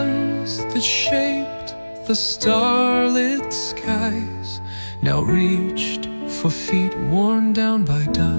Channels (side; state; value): both; inverted; correlation -1.00